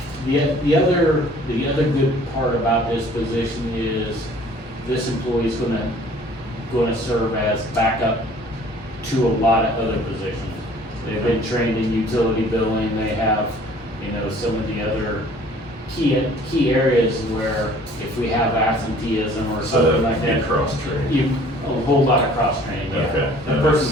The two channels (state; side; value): normal; both; correlation 0.53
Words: the other good part about this position is this employee is gonna gonna serve as backup to a lot of other positions. They've been trained in utility billing, they have, you know, some of the other key areas where if we have absenteeism or something like that. Cross-trained. A whole lot of cross-training, yeah. Okay, The that person's